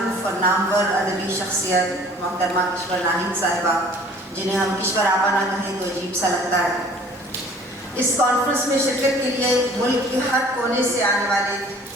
اور نامور ادبی شخصیت محترمہ کشور ناہید صاحبہ، جنہیں ہم کشور آپا نہ کہیں تو عجیب سا لگتا ہے، اس کانفرنس میں شرکت کے لیے ملک کے ہر کونے سے آنے والے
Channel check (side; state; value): both; normal; correlation 0.51